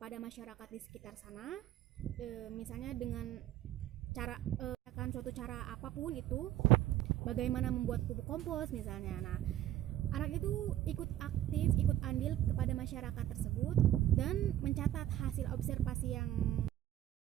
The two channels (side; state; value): left; quieter; 13.0 dB